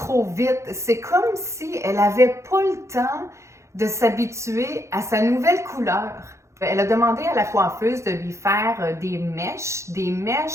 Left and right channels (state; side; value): late; left; 0.14 ms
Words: vite. C'est comme si elle n'avait pas le temps de s'habituer à sa nouvelle couleur. Elle a demandé à la coiffeuse de lui faire des mèches